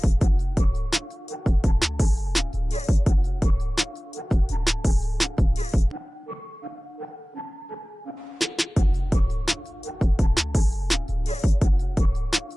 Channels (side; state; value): both; normal; correlation 0.98